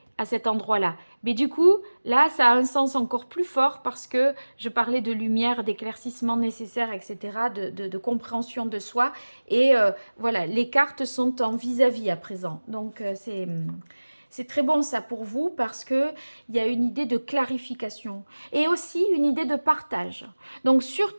à cet endroit-là. Mais du coup, là, ça a un sens encore plus fort parce que je parlais de lumière, d'éclaircissement nécessaire, etc., de compréhension de soi. Et voilà, les cartes sont en vis-à-vis à présent. Donc, c'est très bon ça pour vous parce qu'il y a une idée de clarification et aussi une idée de partage. Donc,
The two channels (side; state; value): both; inverted; correlation -1.00